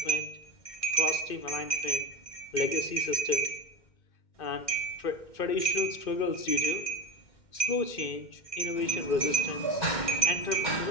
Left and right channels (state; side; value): late; right; 2.1 ms